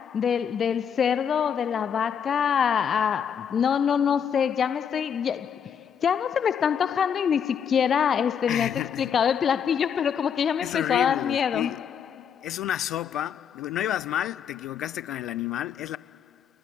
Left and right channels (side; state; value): right; quieter; 7.8 dB